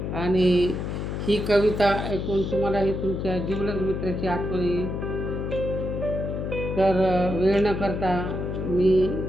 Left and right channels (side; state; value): left; noise; hum, 3 dB below the sound